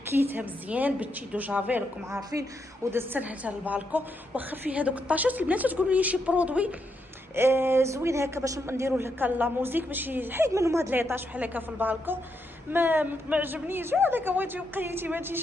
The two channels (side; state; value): both; normal; correlation 0.81